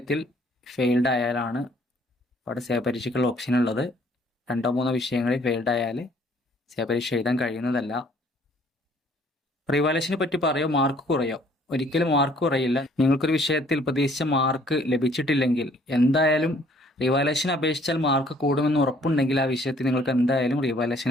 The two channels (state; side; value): normal; both; correlation 0.60